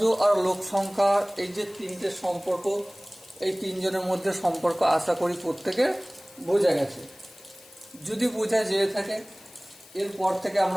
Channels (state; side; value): noise; left; hiss, 23 dB below the sound